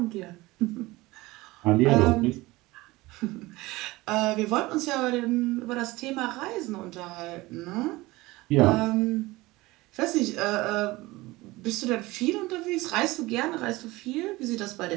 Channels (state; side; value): quieter; left; 20.4 dB